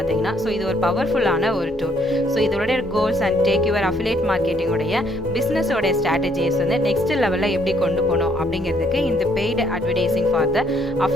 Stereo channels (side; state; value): both; normal; correlation 0.68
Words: ஸோ இது ஒரு பவர்ஃபுல்லான ஒரு டூல். ஸோ இதோட goals and take your affiliate மார்க்கெட்டிங்கோடைய பிஸ்னஸோட ஸ்ட்ராட்டஜிஸ் வந்து நெக்ஸ்ட் லெவலில் எப்படி கொண்டு போகணும் அப்படிங்கிறதுக்கு இந்த paid advertising for the